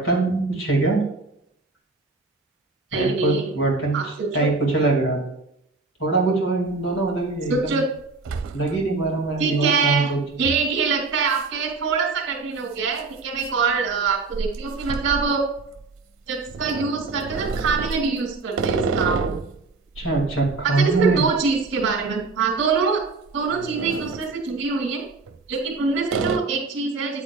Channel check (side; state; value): left; quieter; 3.8 dB